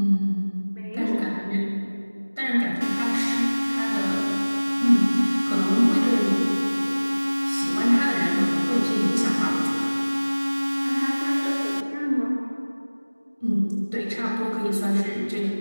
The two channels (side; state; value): both; inverted; correlation -1.00